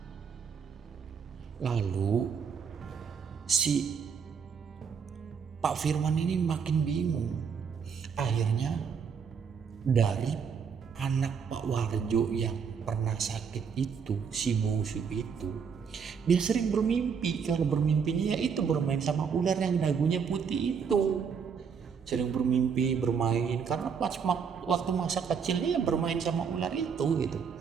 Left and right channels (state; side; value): quieter; left; 6.5 dB